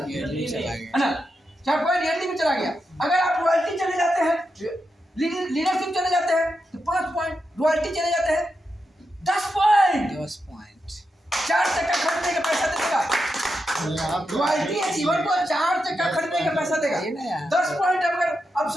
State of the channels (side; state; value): both; normal; correlation 0.87